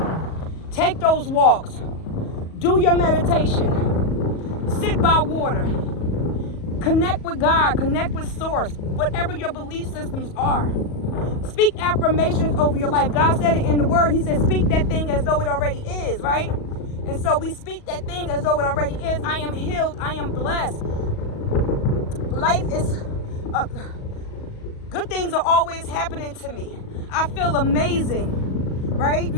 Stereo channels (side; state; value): right; late; 38 ms